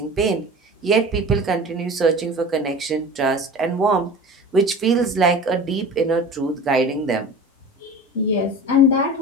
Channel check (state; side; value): normal; both; correlation 0.37